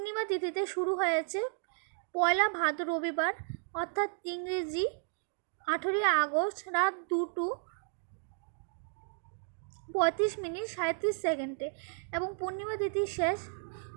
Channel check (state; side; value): silent; left; digital silence